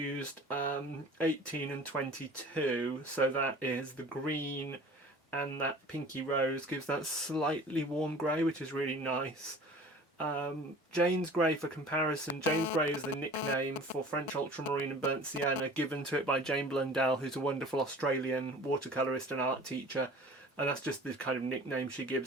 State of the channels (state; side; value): normal; both; correlation 0.44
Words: 18 and 22, so that is the green and that pinky rose gives that slightly warm grey, which is really nice. Jane's Grey, for comparison, Jane's Grey is the nickname for French Ultramarine and Burnt Sienna, given to it by Jane Blundell, who's a wonderful Australian watercolourist and art teacher, and that's just the kind of nickname she